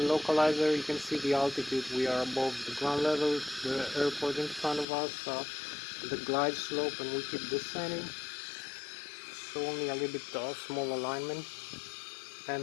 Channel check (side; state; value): right; drops out; at 4.9 s